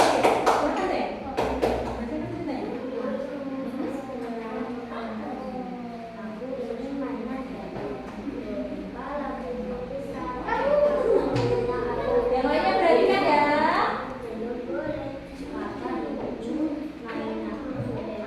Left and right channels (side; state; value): both; identical; correlation 1.00